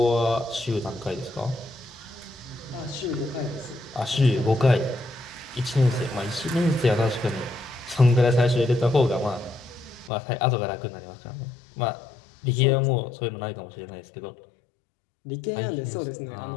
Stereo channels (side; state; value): right; drops out; at 10.1 s